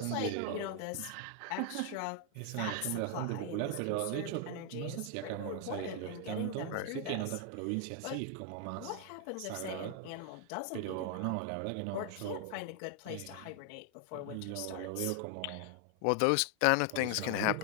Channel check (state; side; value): different; both; correlation 0.00